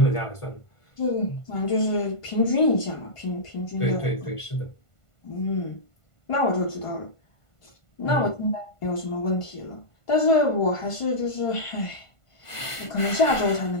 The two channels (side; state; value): right; late; 1.5 ms